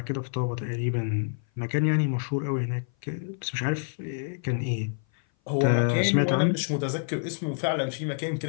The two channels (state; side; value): silent; right; 57 dB below the other